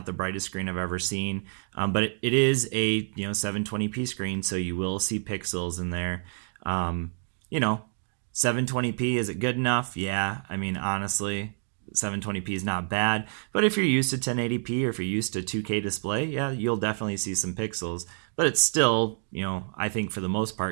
the brightest screen I've ever seen, but it is a 720p screen, so you will see pixels in there. 720p, is it good enough? Yeah, I mean, honestly, 720p is not bad. But if you're used to 1080p or if you're used to 2K display, yeah, you'll definitely see some pixels. But it's still, I think for the most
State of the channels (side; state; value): left; silent; digital silence